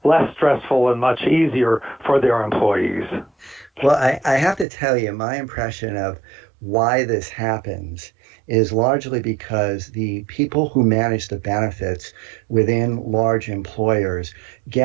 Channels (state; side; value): drops out; left; at 4.7 s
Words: less stressful and much easier for their employees. Well, I have to tell you, my impression of why this happens is largely because the people who manage the benefits within large employers